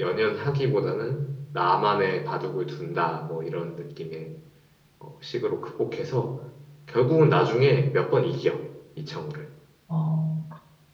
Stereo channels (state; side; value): identical; both; correlation 1.00